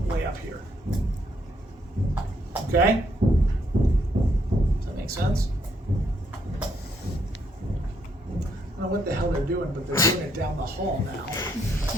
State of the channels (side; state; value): both; normal; correlation 0.73